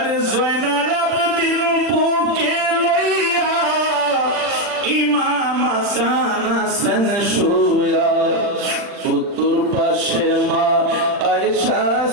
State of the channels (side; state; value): left; late; 40 ms